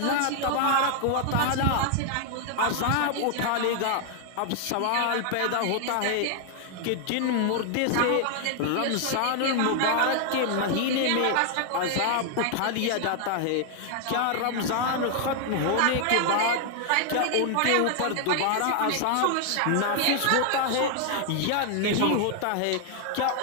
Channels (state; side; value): different; both; correlation 0.00